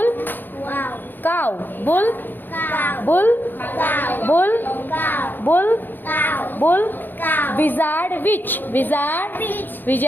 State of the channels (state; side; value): late; right; 0.091 ms